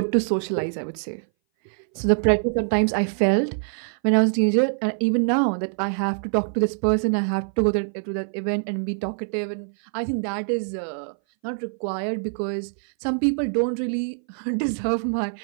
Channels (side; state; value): left; silent; 60 dB below the other